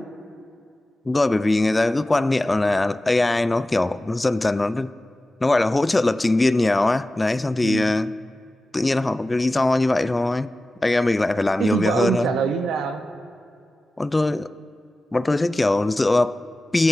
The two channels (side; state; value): both; normal; correlation 0.95